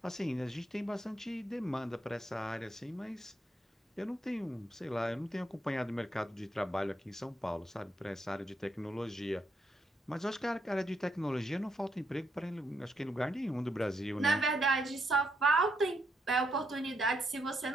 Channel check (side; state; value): both; normal; correlation 0.78